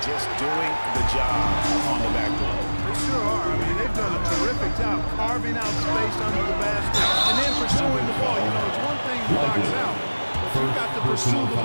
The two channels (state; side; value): inverted; both; correlation -1.00